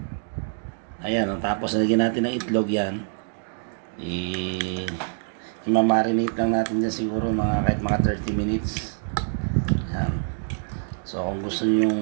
Ayan, tapos lagyan natin ng itlog yan. I-marinate lang natin dyan siguro kahit mga 30 minutes. Ayan. So kung gusto niyo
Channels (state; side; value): silent; left; 62 dB below the other